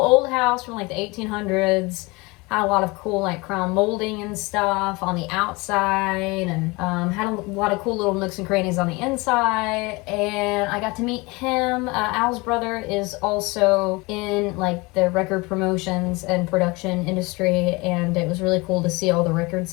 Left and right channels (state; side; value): quieter; right; 24.9 dB